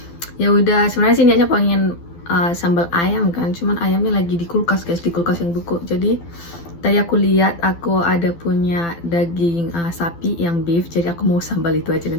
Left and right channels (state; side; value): late; right; 12 ms